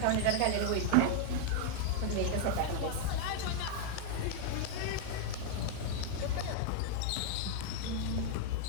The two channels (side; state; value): both; different; correlation 0.00